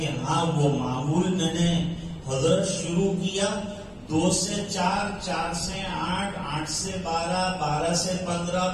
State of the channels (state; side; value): identical; both; correlation 1.00